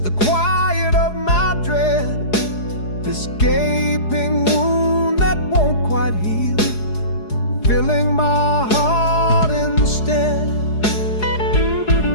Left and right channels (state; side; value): late; right; 4.8 ms